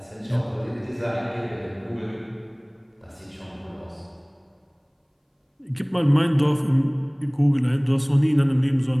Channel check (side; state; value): both; identical; correlation 1.00